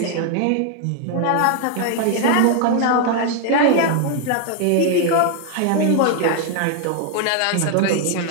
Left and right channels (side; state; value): both; different; correlation 0.00